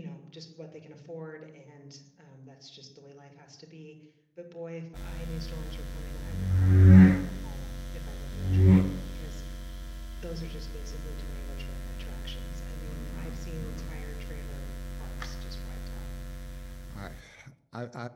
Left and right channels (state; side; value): identical; both; correlation 1.00